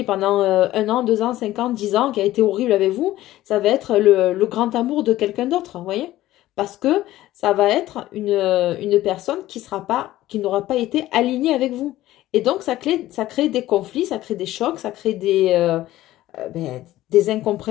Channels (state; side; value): quieter; right; 15.3 dB